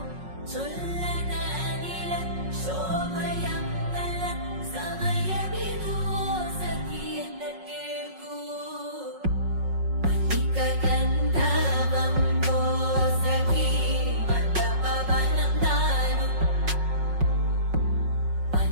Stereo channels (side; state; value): left; late; 5.4 ms